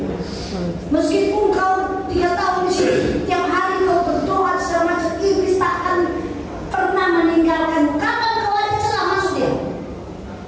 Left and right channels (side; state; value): both; identical; correlation 1.00